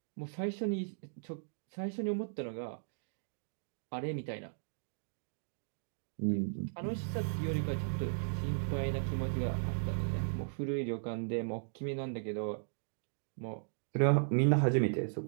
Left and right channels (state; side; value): silent; left; digital silence